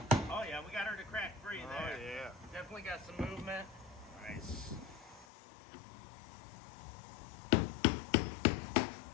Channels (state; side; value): drops out; right; at 5.2 s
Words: Oh yeah, we got her to crack free there. Oh yeah. Definitely got some movement. Nice.